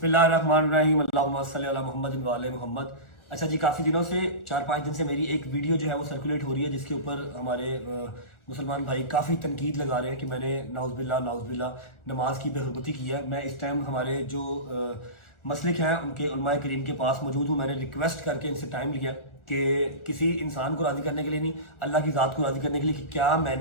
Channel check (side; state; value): right; late; 1.4 ms